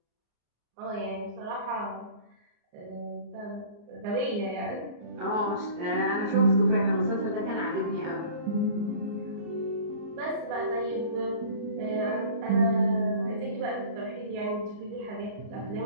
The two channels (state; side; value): late; left; 34 ms